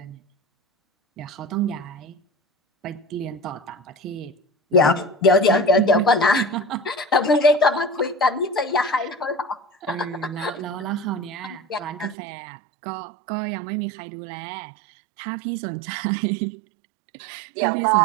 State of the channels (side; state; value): left; drops out; at 12.2 s